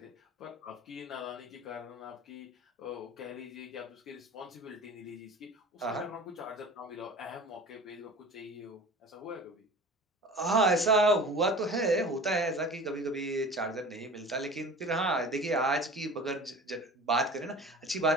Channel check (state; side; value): normal; both; correlation 0.39